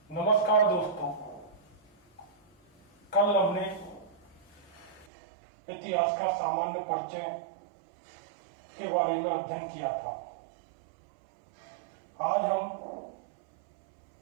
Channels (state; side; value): drops out; left; at 5.1 s